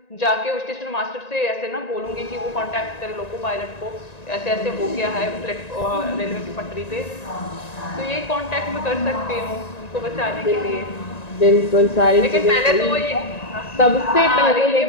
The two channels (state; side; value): late; right; 1.9 ms